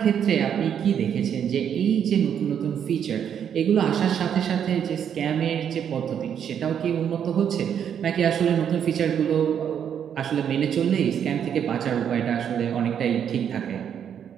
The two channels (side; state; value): left; quieter; 8.6 dB